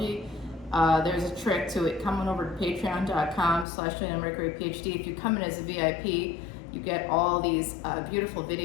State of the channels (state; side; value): drops out; right; at 3.7 s